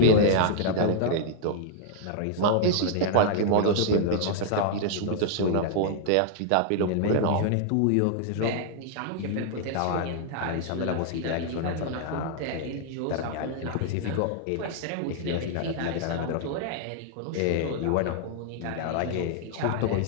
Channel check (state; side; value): different; both; correlation -0.01